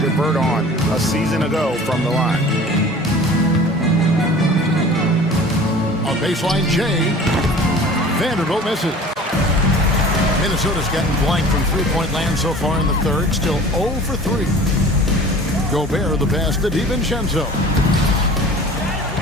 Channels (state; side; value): normal; both; correlation 0.43